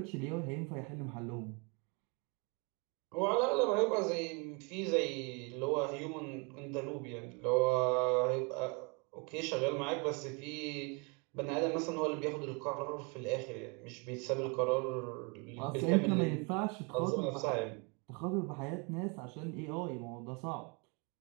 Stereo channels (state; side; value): quieter; left; 32.4 dB